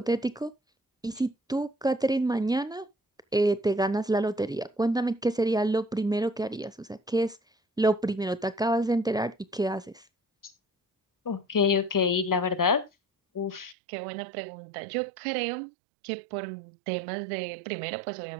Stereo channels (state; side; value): drops out; left; at 13.8 s